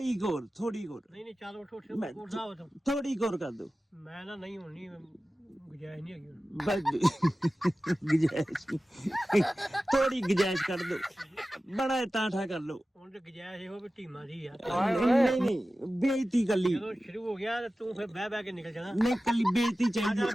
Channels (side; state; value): both; normal; correlation 0.95